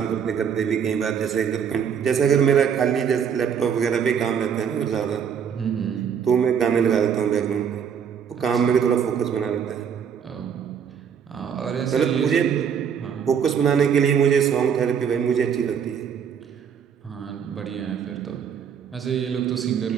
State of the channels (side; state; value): left; quieter; 7.6 dB